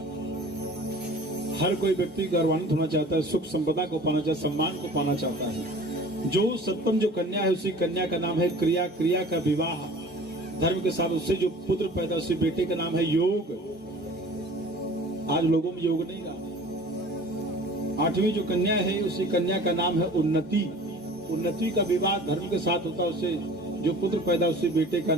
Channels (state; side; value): normal; both; correlation 0.45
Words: हर कोई व्यक्ति गौरवान्वित होना चाहता है, सुख संपदा को पाना चाहता है, सम्मान को पाना चाहता है। जो सप्तम जो कन्या है उसी कन्या का नाम है क्रिया। क्रिया का विवाह धर्म के साथ, उससे जो पुत्र पैदा उसी बेटे का नाम है योग। आज लोगों में योग नहीं रहा। आठवीं जो कन्या है उसी कन्या का नाम है उन्नति। उन्नति का विवाह धर्म के साथ होता है, उससे जो पुत्र पैदा उसी बेटे का